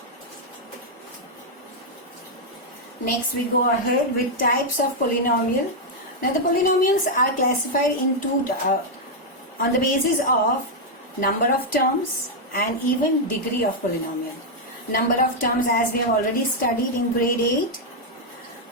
Next we go ahead with types of polynomial. Now the polynomials are classified into on the basis of number of terms and even degree of polynomial. number of terms as we have already studied in grade 8.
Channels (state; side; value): normal; both; correlation -0.02